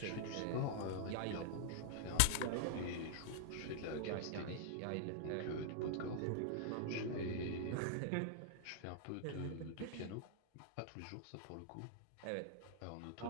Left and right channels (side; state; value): both; different; correlation -0.01